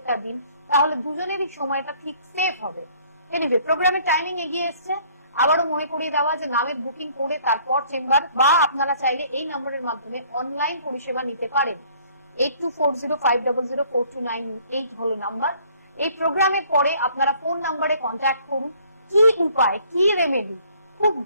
দিন, তাহলে দুজনেরই সময়টা ঠিক সেফ হবে। এনিওয়ে, প্রোগ্রামের টাইমিং এগিয়ে এসছে। আবারও মনে করিয়ে দেওয়া যে নামের বুকিং করে তারপর চেম্বার, বা আপনারা চাইলে এই নম্বরের মাধ্যমে অনলাইন পরিষেবা নিতে পারেন। 8240500429 হলো নাম্বার। এই প্রোগ্রামের পরে আপনারা ফোন নাম্বারে কন্ট্যাক্ট করুন। কি উপায়, কি রেমেডি, খুব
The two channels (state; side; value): inverted; both; correlation -0.59